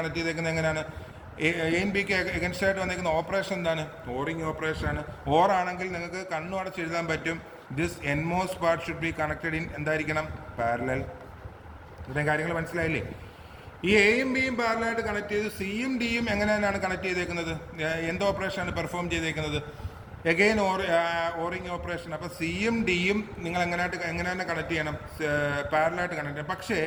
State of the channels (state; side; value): identical; both; correlation 1.00